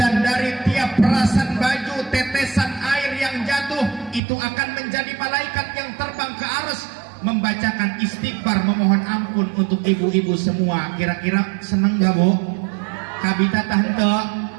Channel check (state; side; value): drops out; left; at 4.2 s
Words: dari tiap perasan baju, tetesan air yang jatuh itu akan menjadi malaikat yang terbang ke arsy membacakan istighfar, memohon ampun untuk ibu-ibu semua. Kira-kira seneng gak, Bu? Kabita